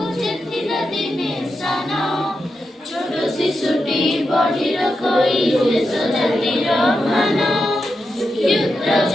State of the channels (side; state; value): both; normal; correlation 0.87